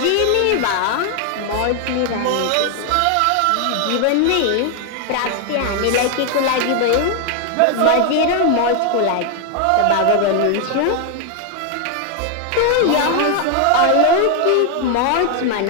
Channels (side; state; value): both; different; correlation 0.00